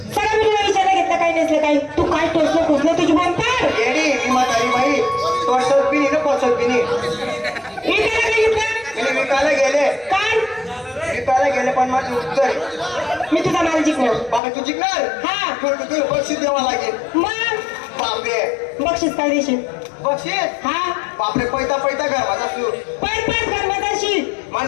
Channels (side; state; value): right; drops out; at 14.4 s